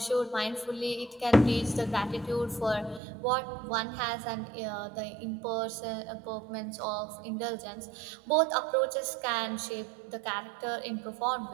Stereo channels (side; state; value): left; drops out; at 3.0 s